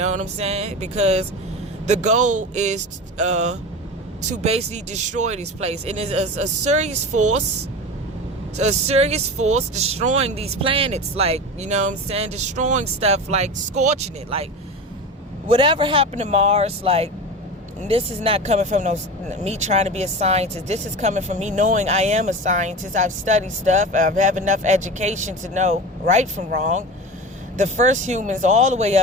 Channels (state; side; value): normal; both; correlation 0.29